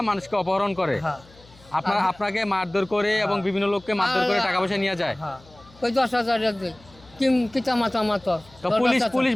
মানুষকে অপহরণ করে, হ্যাঁ আপনাকে মারধর করে এবং বিভিন্ন লোককে মারধর করে টাকা পয়সা নিয়ে যায়? হ্যাঁ। ওই 10,000 টাকা দিই কিতা মাতা মাতো। তো পুলিশ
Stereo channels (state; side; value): noise; left; hum, 25 dB below the sound